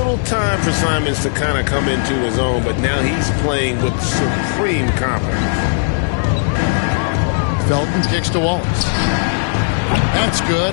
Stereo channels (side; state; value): right; silent; digital silence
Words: time for Simons to kind of come into his own, but now he's playing with supreme confidence. Felton kicks to Wallace. That's